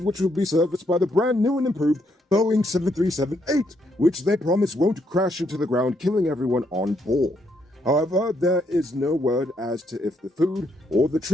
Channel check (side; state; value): both; normal; correlation 0.75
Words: will be serviced by the brand new and improved Boeing 737-8, which they promise won't crash into the ground, killing everyone on board. However, there is no word as to if the food or the